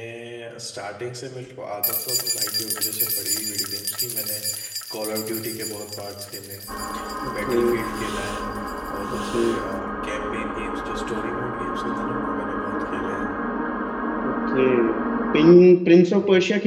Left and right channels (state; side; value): identical; both; correlation 1.00